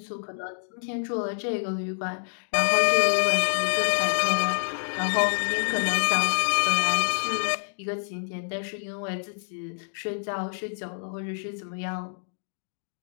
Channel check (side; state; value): right; silent; digital silence